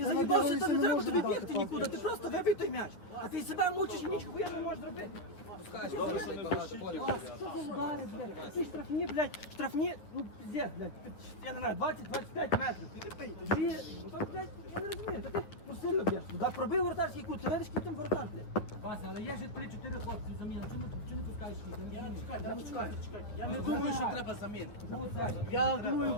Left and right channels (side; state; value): right; late; 9.7 ms